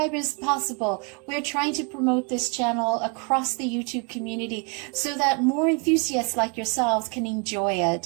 possible. We're trying to promote this channel across the YouTube community so that more enthusiasts like yourselves can enjoy it.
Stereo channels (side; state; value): left; quieter; 35.2 dB